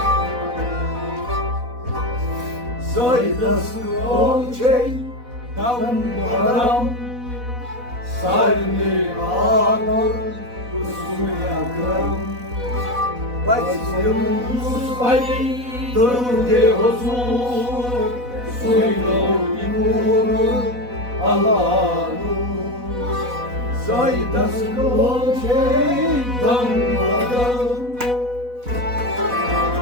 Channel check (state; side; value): late; left; 4.1 ms